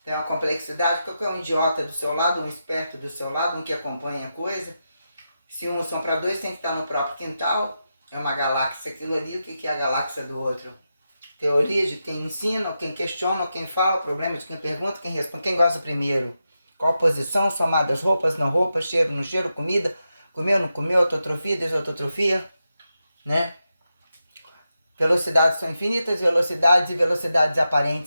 Tem uma complexidade, qualquer um idiota do seu lado, um esperto do seu lado, um que acompanha a coisa. Se um são para dois, tem que estar no próprio quintal. É uma galáxia aquilo ali, o que é a galáxia do outro? Teoria de quem ensina, quem questiona, quem fala, problema de quem pergunta, quem responde, quem gosta primeiro. Qual posição, somadas roupas, não roupas, cheiro, não cheiro, comida, comeu, não comeu, autotrofia, desautografia, né? Velocidades são infinitas, velocidades e velocidades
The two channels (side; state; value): both; inverted; correlation -0.88